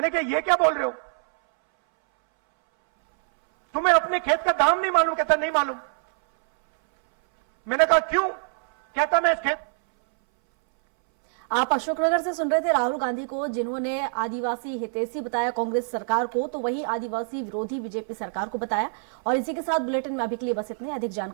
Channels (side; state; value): left; silent; 61 dB below the other